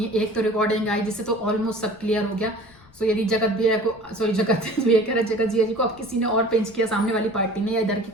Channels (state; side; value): noise; left; rumble, 26 dB below the sound